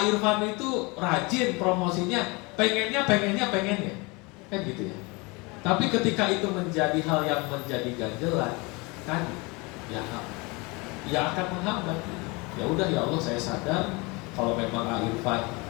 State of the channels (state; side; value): quieter; right; 26.9 dB